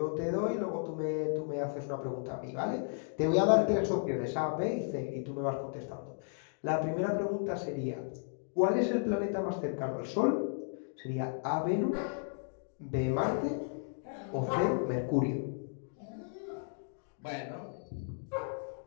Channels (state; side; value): silent; right; digital silence